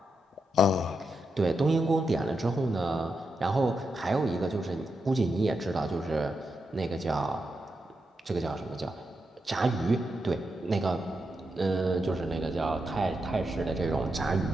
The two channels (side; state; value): both; normal; correlation 0.85